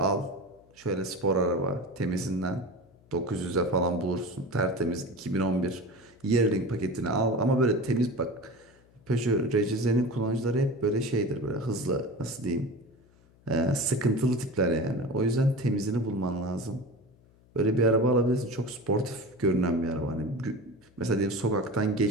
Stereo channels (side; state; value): left; noise; hum, 29 dB below the sound